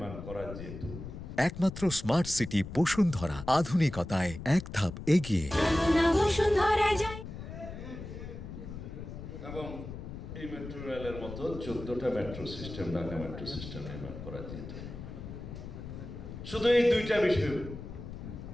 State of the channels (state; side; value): noise; left; rumble, 10 dB below the sound